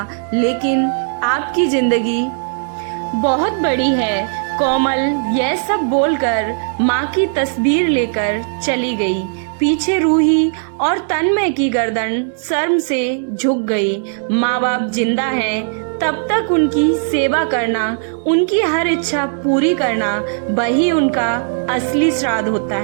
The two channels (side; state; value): left; silent; digital silence